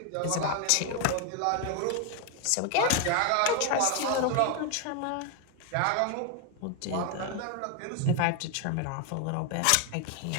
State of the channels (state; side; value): different; both; correlation 0.01